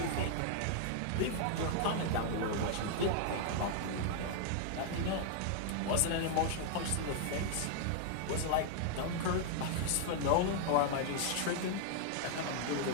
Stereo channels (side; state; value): both; different; correlation 0.00